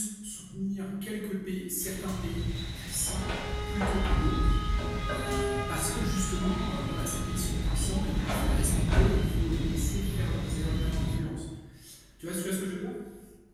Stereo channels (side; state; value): both; identical; correlation 1.00